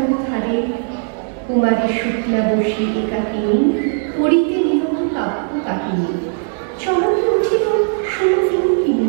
ধারে কুমারী শুক্লা বসে একাকিনী পড়িতে নিরব কাব্য কাহিনী। চমকে উঠিল সুমকিনী,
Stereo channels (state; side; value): silent; left; 59 dB below the other